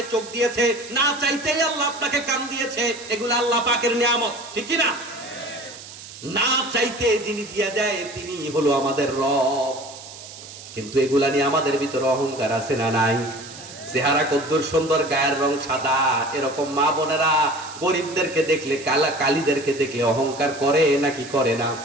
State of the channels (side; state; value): right; noise; hiss, 15 dB below the sound